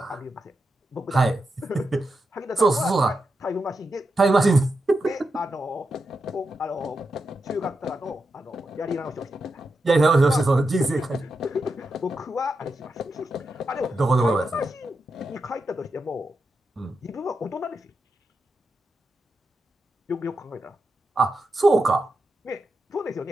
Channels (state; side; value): normal; both; correlation 0.87